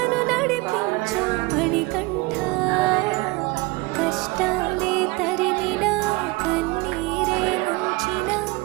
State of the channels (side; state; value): left; quieter; 23.4 dB